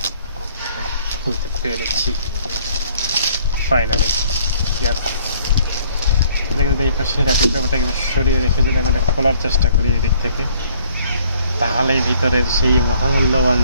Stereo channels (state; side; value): inverted; both; correlation -0.60